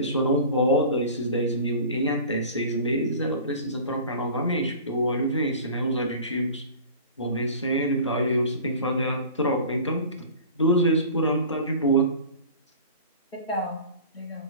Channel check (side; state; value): both; inverted; correlation -0.40